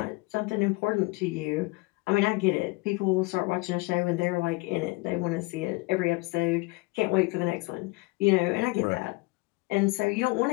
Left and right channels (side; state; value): right; quieter; 25.2 dB